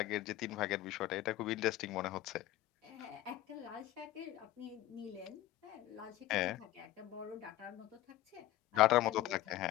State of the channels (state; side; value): quieter; right; 15.0 dB